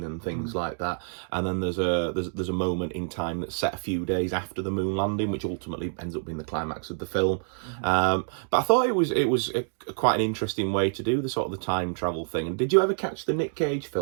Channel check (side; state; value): left; silent; digital silence